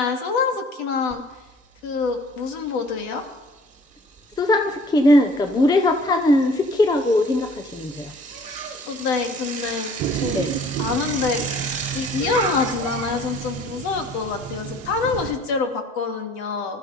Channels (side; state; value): both; normal; correlation 0.52